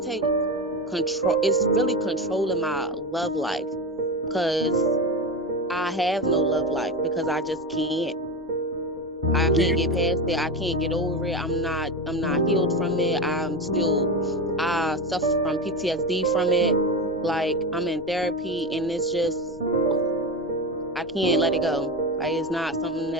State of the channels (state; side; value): normal; both; correlation 0.20